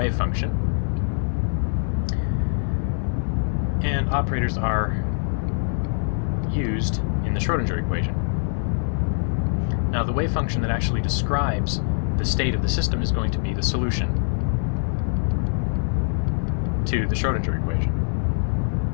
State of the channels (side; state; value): right; silent; digital silence